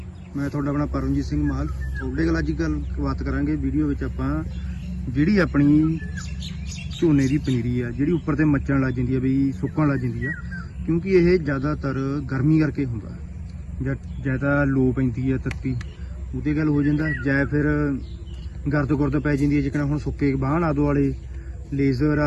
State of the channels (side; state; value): both; identical; correlation 1.00